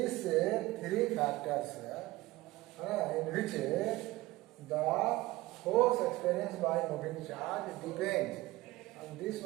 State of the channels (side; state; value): left; quieter; 19.2 dB